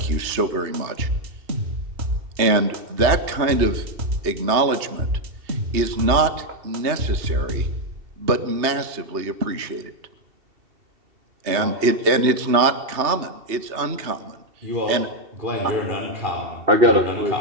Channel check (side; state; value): left; late; 2.7 ms